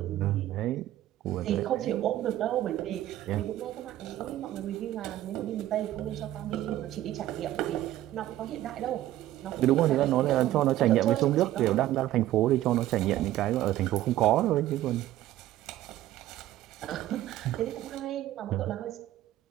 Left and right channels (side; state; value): left; quieter; 14.0 dB